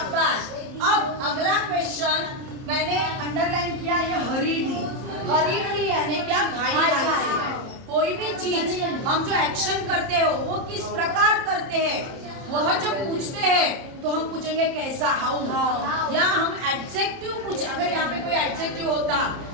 अब अगला क्वेश्चन मैंने अंडरलाइन किया, ये हरीडली यानी क्या? घाई से। कोई भी चीज हम जो एक्शन करते हो वो किस प्रकार करते हैं, वह जो पूछते हैं तो हम पूछेंगे कैसा, हाउ। या हम एडजेक्टिव पूछ, अगर यहाँ पे कोई एडजेक्टिव होता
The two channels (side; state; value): left; late; 30 ms